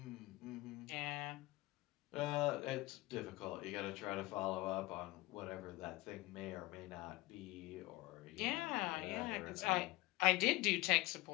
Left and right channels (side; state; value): right; quieter; 20.4 dB